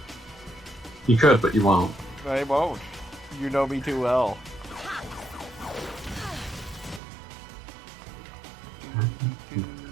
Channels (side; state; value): left; drops out; at 7.0 s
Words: You could, but you won't. I won't. You know me too well.